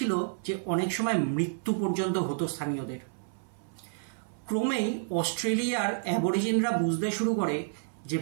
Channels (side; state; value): left; silent; 58 dB below the other